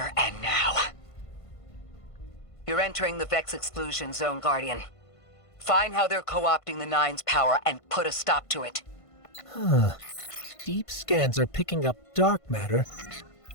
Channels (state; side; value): late; right; 1.5 ms